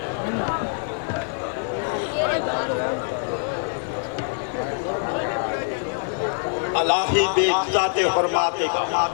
अलाही बेइज्जत हुर्माते का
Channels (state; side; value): silent; right; digital silence